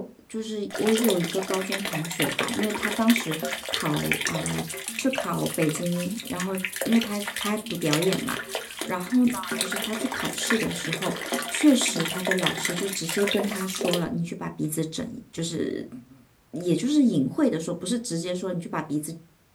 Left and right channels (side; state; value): both; identical; correlation 1.00